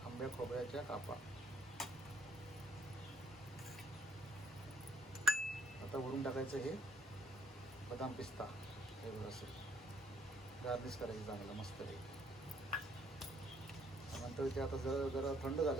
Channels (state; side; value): normal; both; correlation 0.67